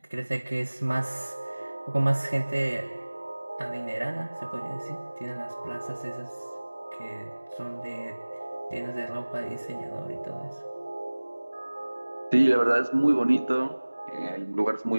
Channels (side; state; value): both; inverted; correlation -1.00